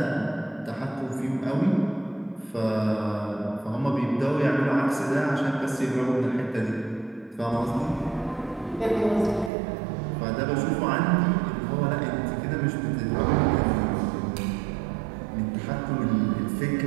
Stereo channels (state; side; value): drops out; left; at 9.5 s